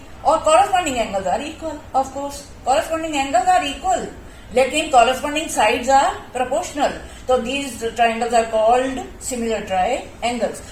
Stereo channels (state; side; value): identical; both; correlation 1.00